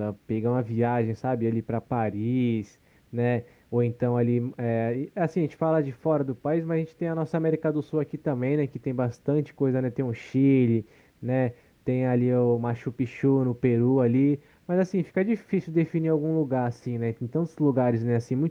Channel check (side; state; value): both; identical; correlation 1.00